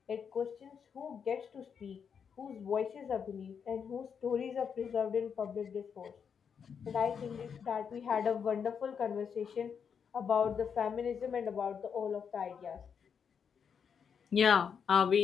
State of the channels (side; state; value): right; quieter; 6.9 dB